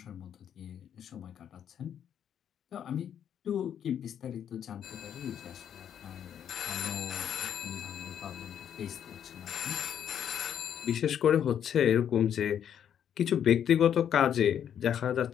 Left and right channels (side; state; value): right; quieter; 9.2 dB